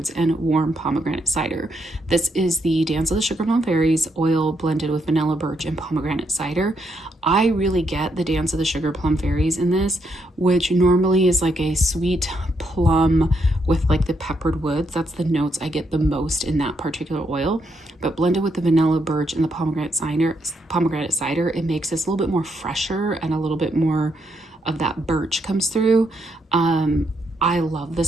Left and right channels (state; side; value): normal; both; correlation 0.77